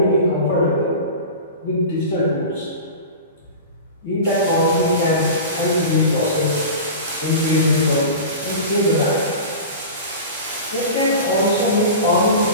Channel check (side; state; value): both; inverted; correlation -0.32